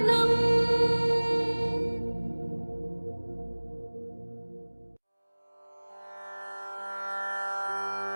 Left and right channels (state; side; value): inverted; both; correlation -1.00